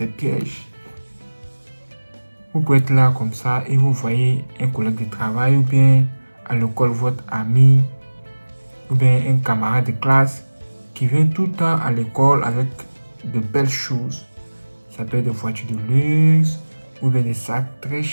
pièges. Vous pouvez être là comme ça et vous voyez un collègue de travail ou bien à l'école votre ami ou bien un camarade de classe qui vient tout le temps à l'école avec de belles choses. Ça peut être des voitures de luxe ou bien des sacs très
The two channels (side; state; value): both; inverted; correlation -1.00